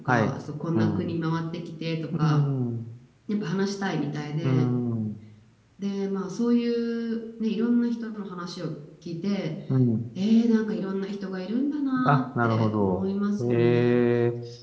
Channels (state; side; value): identical; both; correlation 1.00